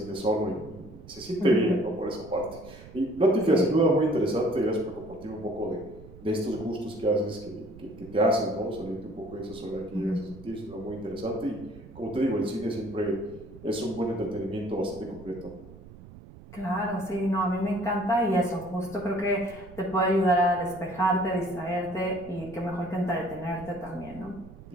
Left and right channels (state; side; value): noise; right; rumble, 18 dB below the sound